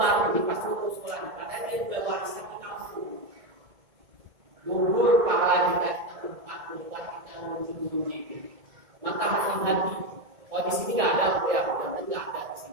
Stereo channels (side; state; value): left; late; 1.6 ms